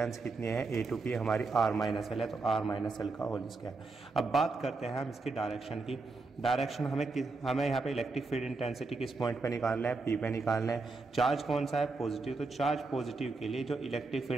कितनी है A टू P हमारी r-l है, तो r-l का होल स्क्वायर। अब बात करते हैं हम इसकी डायरेक्शन की। डायरेक्शन हमें यहाँ पे इलेक्ट्रिक फील्ड इंटेंसिटी किस पॉइंट पे निकालना है, P पे निकालना है। चार्ज कौन सा है, पॉजिटिव, तो चार्ज पॉजिटिव के लिए जो इलेक्ट्रिक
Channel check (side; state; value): left; quieter; 3.8 dB